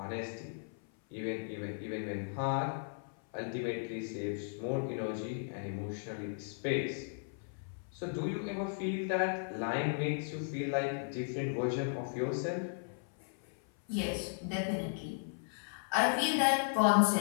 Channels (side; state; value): right; silent; 54 dB below the other